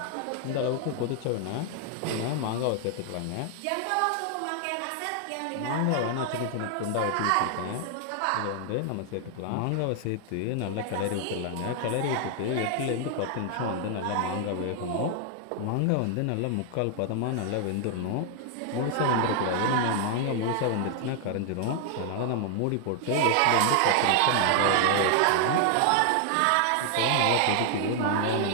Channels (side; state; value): both; different; correlation 0.00